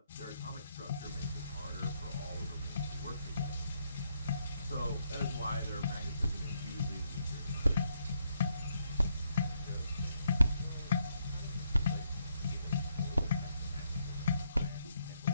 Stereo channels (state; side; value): inverted; both; correlation -0.75